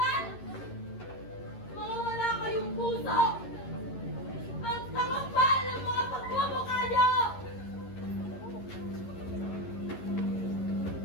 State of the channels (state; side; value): late; right; 11 ms